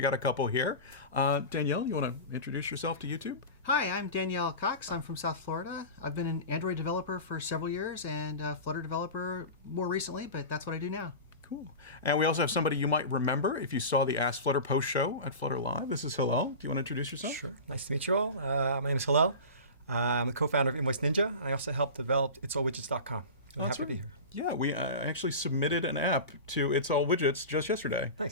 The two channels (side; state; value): both; inverted; correlation -0.30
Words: got a couple here. Danielle, you want to introduce yourself to YouTube? Hi, I'm Danielle Cox. I'm from South Florida. I've been an Android developer for several years and a Flutter developer more recently, but that's what I do now. Cool. And we also have somebody you might remember if you saw the Ask Flutter post show at Flutter Live. This is Hillel. Do you want to introduce yourself? Sure. Nice to meet you all. My name is Hillel. I'm the co-founder of Invoice Ninja. I also helped develop itsallwidgets.com. I'm happy to be here. Yeah, we actually submitted an app to It's All Widgets just yesterday.